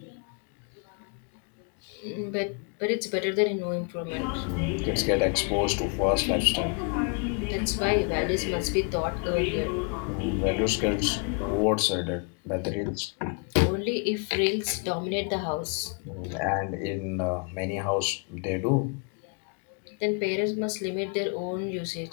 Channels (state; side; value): quieter; right; 36.9 dB